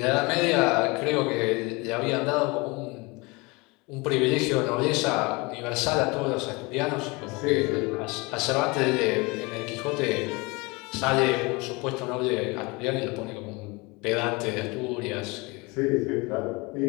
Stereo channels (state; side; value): quieter; right; 26.1 dB